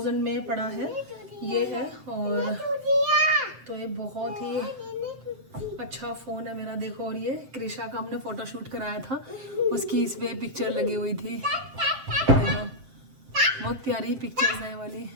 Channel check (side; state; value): left; late; 7.6 ms